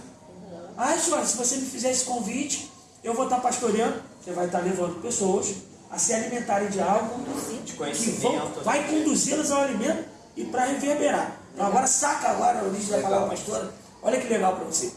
Senhora, se você me fizer esse convite, eu vou estar pastoreando, você vai estar levando pessoas a se alimentarem de algo que vai conduzi-las ao alimento e para reverberar. Então agora saca agora a origem da palavra pastora, olha que legal para você.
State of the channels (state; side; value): identical; both; correlation 1.00